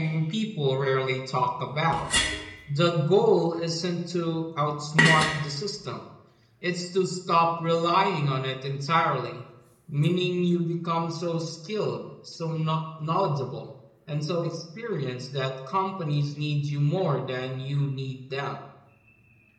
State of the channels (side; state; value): both; identical; correlation 1.00